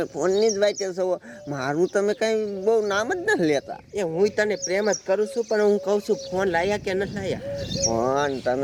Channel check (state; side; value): identical; both; correlation 1.00